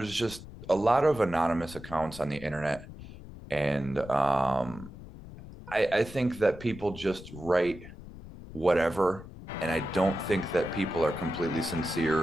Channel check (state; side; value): noise; left; rumble, 15 dB below the sound